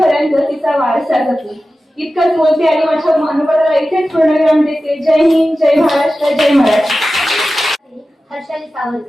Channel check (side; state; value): both; normal; correlation 0.94